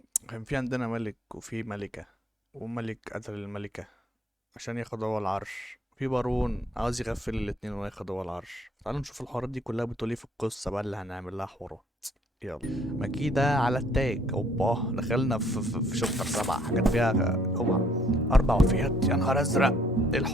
كان في عندنا ملك وفي ملكة، وملك قتل الملكة عشان ياخد هو العرش. في بارون عاوز يغفل الاتنين وياخد هو العرش. تعالوا نشوف الحوارات دي كلها بتقول ايه في القصة بقى اللي هنعمل لها حوارات. يلا مكيدة على التاج. اوبا دخلنا في شابتر 7، حاجات فيها اوعى 4 وفيات. يا نهار ازرق، ايه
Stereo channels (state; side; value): normal; both; correlation 0.63